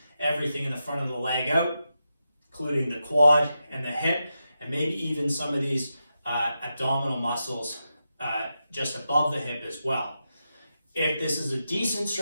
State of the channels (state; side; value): inverted; both; correlation -0.88